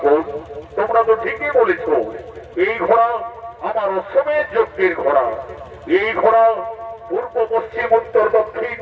তোমরা তো ঠিকই বলেছ। এই ঘোড়া আমার অশ্বমের যজ্ঞের ঘোড়া। এই ঘোড়া পূর্ব পশ্চিম উত্তর দক্ষিণ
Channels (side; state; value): both; identical; correlation 1.00